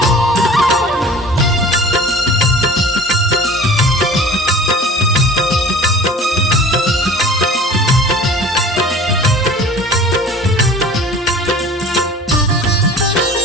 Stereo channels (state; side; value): normal; both; correlation 0.43